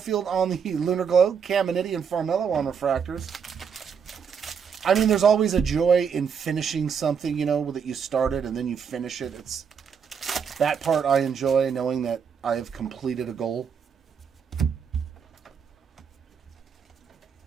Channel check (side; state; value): left; quieter; 6.8 dB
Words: on the Lunar Glow, Caminiti and Farmello on refractors. I mean, there's always a joy in finishing something, you know, that you started and then you finish it. It's that part I enjoy, knowing that I have completed a goal.